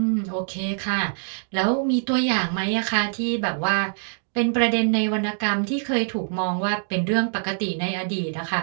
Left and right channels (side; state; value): left; silent; digital silence